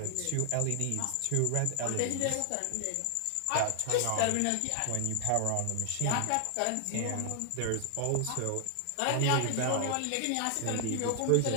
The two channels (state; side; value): different; both; correlation 0.00